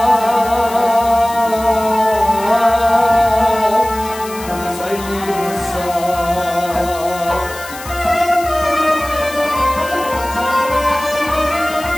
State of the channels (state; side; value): noise; left; hiss, 14 dB below the sound